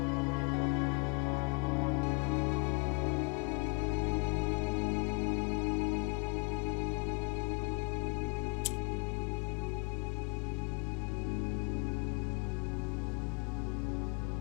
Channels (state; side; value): quieter; right; 33.3 dB